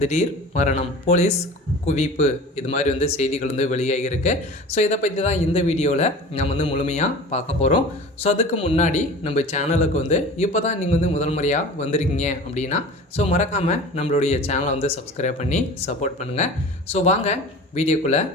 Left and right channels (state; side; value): normal; both; correlation 0.38